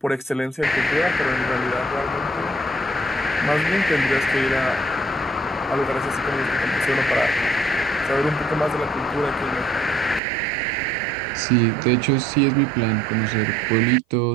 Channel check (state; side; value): drops out; left; at 10.2 s